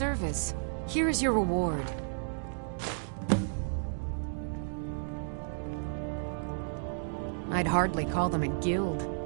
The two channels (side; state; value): left; silent; digital silence